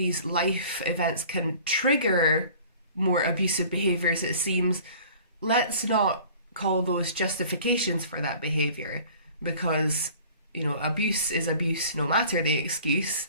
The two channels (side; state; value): both; inverted; correlation -0.47